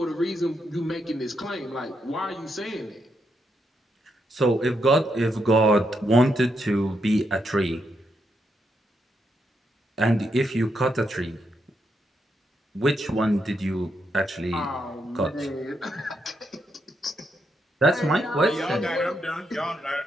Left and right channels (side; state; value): both; normal; correlation 0.80